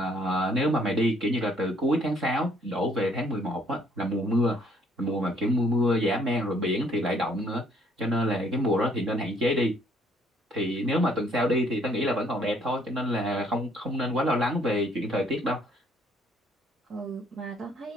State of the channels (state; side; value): normal; both; correlation 0.64